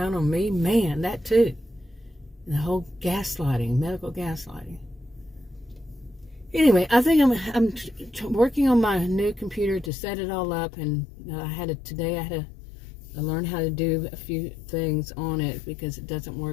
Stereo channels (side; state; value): right; drops out; at 9.9 s